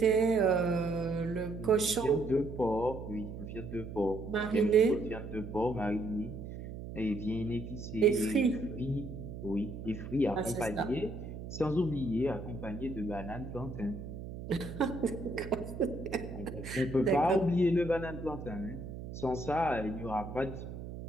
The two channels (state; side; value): noise; right; hum, 9 dB below the sound